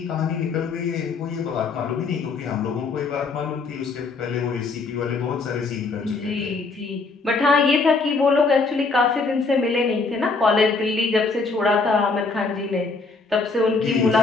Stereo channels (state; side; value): quieter; right; 4.1 dB